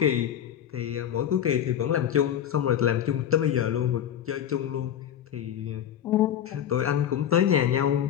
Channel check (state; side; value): quieter; right; 10.0 dB